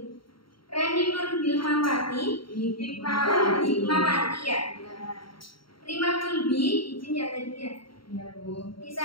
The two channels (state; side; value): late; right; 0.73 ms